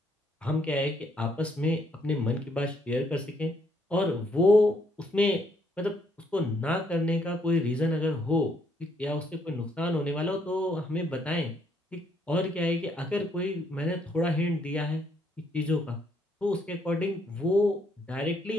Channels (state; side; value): normal; both; correlation 0.70